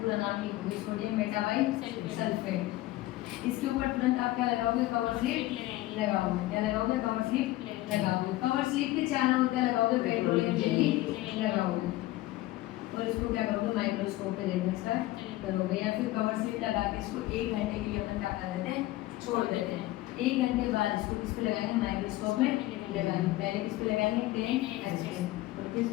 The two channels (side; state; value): right; quieter; 17.0 dB